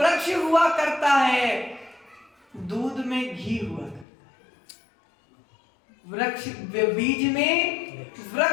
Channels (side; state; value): right; drops out; at 4.0 s